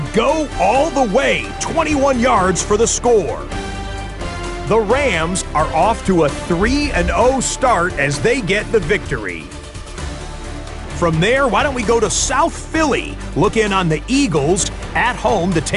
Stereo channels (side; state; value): both; identical; correlation 1.00